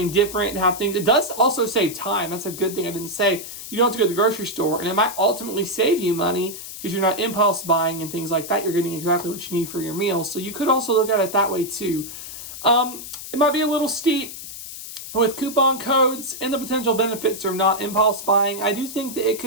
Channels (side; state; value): left; noise; hiss, 11 dB below the sound